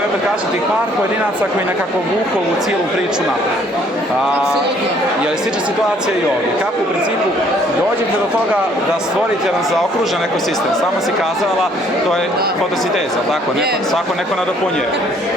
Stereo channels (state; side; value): normal; both; correlation 0.62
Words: opet, kažem, tih par pojedinaca koji nekako vuku u cijelu priču naprijed. Je li slična situacija i ovdje? Kako u principu dođete do toga da stvorite jedan zaokružen ekosistem? Samo si kazala, to je fotosinteza, tako? Svako neko nadopunjuje.